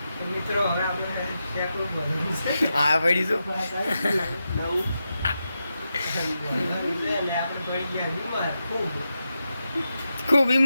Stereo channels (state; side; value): inverted; both; correlation -0.88